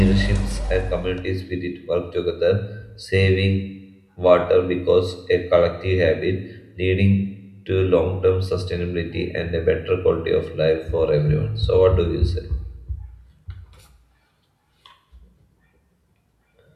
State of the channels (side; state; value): both; identical; correlation 1.00